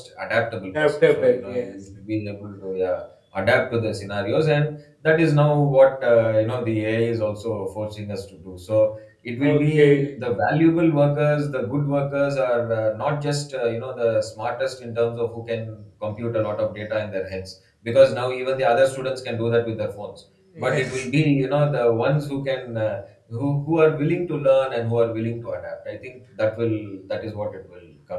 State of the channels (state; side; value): identical; both; correlation 1.00